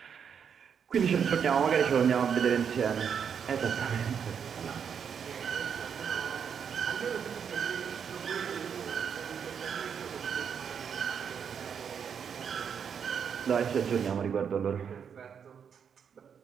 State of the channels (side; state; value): left; quieter; 7.3 dB